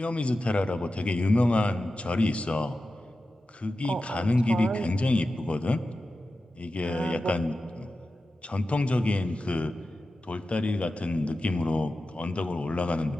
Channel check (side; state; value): both; normal; correlation 0.93